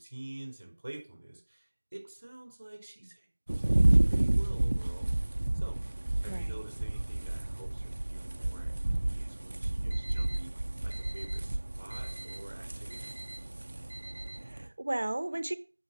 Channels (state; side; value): inverted; both; correlation -1.00